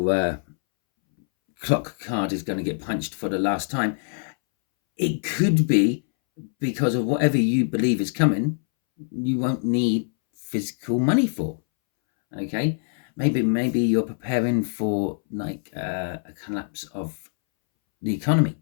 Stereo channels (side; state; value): right; silent; 62 dB below the other